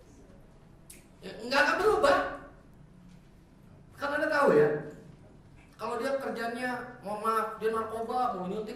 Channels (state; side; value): identical; both; correlation 1.00